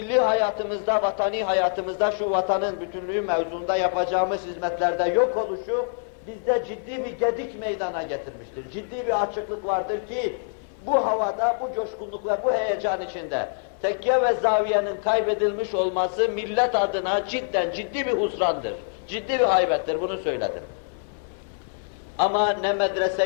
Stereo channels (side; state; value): right; silent; digital silence